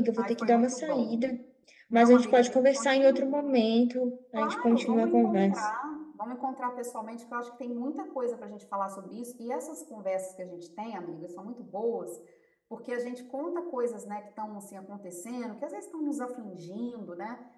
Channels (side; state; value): both; identical; correlation 1.00